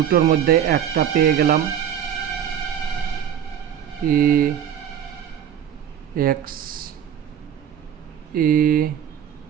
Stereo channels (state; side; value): quieter; left; 9.4 dB